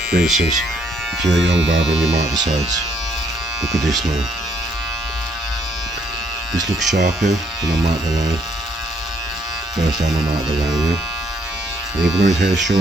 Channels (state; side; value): normal; both; correlation 0.70